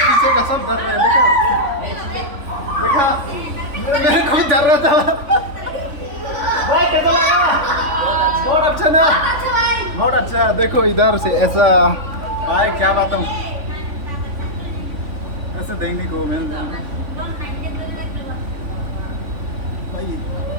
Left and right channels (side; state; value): left; late; 3.5 ms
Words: पीछे का सब डर रहा है। देखा मेरे को भी डर रहा था। भाई कैसा लगा? बहुत अच्छा ना, बहुत अच्छा। देखो इधर से ऐसा, भाई क्या बताऊँ, ऐसे देखने को मिल जाएगा भाई।